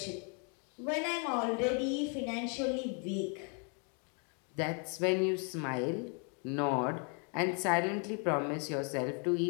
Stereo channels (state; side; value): quieter; right; 38.4 dB